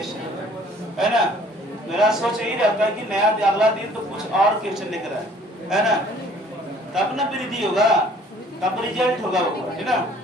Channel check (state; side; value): normal; both; correlation 0.55